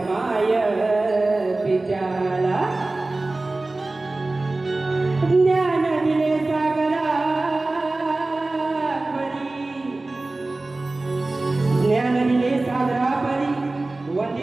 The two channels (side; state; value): left; quieter; 3.1 dB